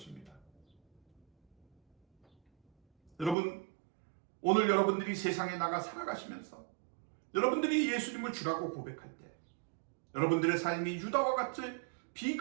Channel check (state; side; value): drops out; left; at 3.4 s